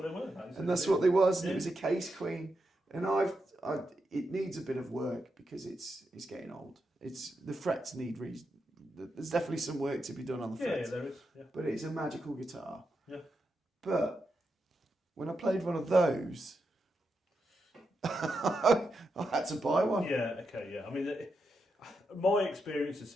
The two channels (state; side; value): normal; both; correlation 0.85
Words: they were. And that's what they was. And it was a Case Queen, and it needs a bit of work because it's getting old. The frets need there's definitely some work to be done on the frets. Yeah, there is. Yeah. But it's a magical guitar. Yeah. But when I played one of those, I had to buy one. Yeah, okay, yeah. I mean, my experience of